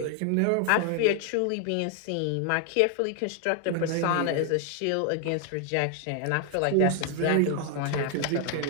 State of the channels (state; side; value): different; both; correlation 0.00